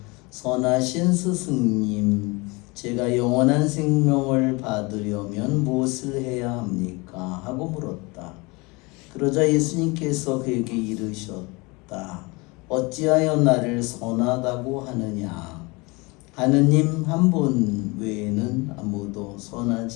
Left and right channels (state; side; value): quieter; right; 26.1 dB